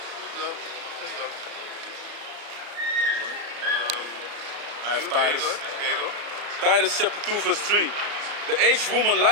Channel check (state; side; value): late; left; 34 ms